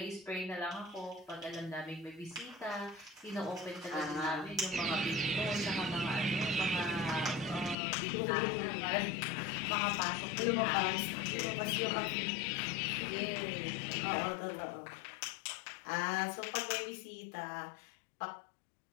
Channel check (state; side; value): drops out; right; at 7.8 s